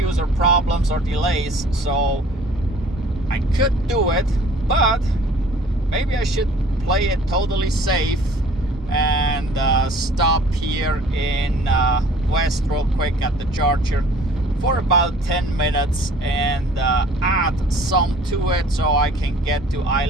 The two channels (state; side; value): normal; both; correlation 0.52